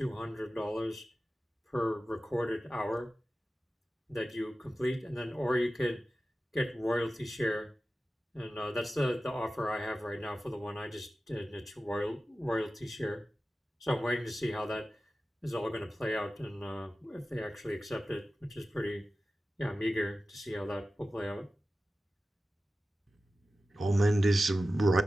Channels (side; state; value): both; normal; correlation 0.94